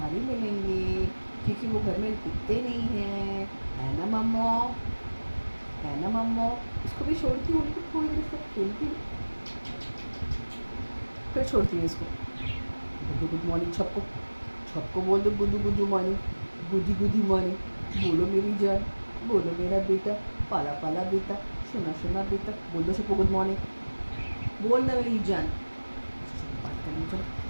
ही मिलेंगे क्योंकि वो घर में टिकते नहीं हैं, है ना मम्मो, है ना मम्मो। इसको भी छोड़ती हूँ, उनको थोड़ी देर इसको खेलती हूँ, फिर छोड़ती हूँ इसको। गुड गुड मॉर्निंग सबको, सबको बोल दो गुडू गुडू मॉर्निंग, गुडी गुडी मॉर्निंग। बोलो मेरी जान, बोलो मेरा बेटा, पाला पाला बेटा, सुना सुना बेटा, बोल दो सबको गुड मॉर्निंग। बोल ना मेरी जान। बात करेंगे, चलो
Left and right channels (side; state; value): both; inverted; correlation -1.00